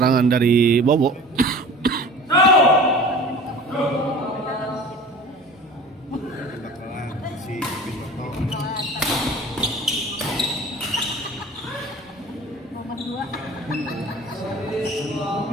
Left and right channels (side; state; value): both; normal; correlation 0.40